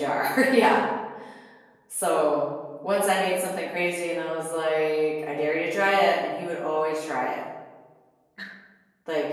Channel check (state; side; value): identical; both; correlation 1.00